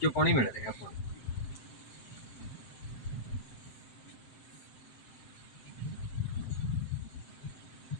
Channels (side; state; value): right; late; 7.9 ms